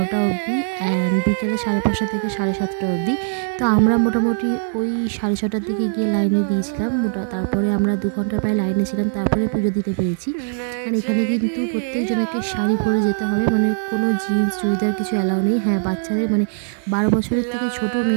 অবধি অ্যান্ড বিকেলে 5:30 থেকে 7:30 অবধি। তো আমরা মোটামুটি ওই 6:30টার দিকে গিয়ে লাইনে দিয়েছিলাম তারপরে আমরা 2 ঘন্টা প্রায় লাইনে ছিলাম, তারপরে পুজো দিতে পেরেছি। অ্যান্ড এখানে কিন্তু প্রত্যেকজনকে শাড়ি পরে যেতে হবে, মানে কোনো জিন্স চুড়িদার কিছু অ্যালাউ নেই। হ্যাঁ, বাচ্চাদের মানে 12 বছরের থেকে ছোট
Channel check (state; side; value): silent; left; digital silence